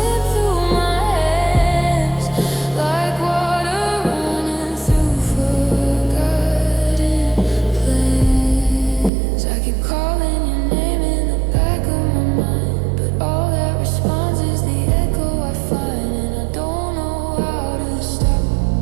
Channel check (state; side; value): drops out; left; at 9.1 s